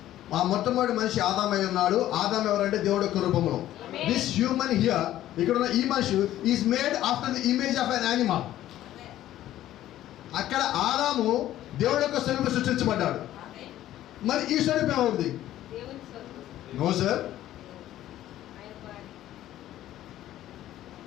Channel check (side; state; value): right; quieter; 13.4 dB